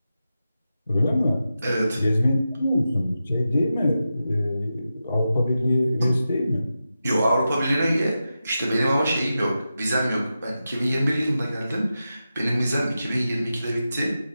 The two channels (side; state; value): both; inverted; correlation -0.90